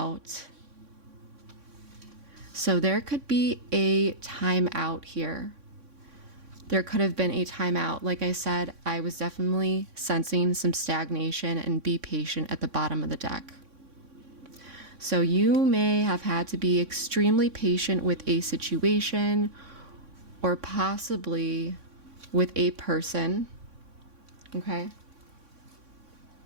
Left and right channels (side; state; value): left; late; 3.6 ms